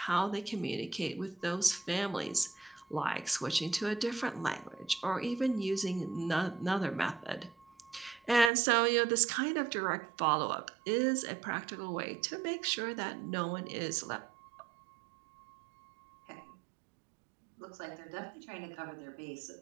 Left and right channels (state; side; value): drops out; left; at 8.5 s